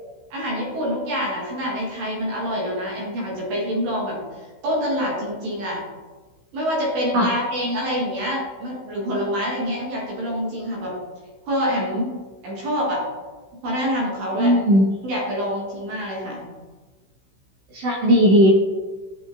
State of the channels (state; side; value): late; left; 16 ms